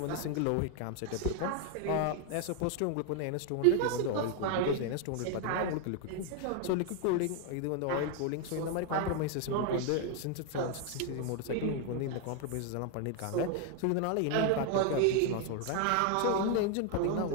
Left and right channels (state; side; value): different; both; correlation 0.01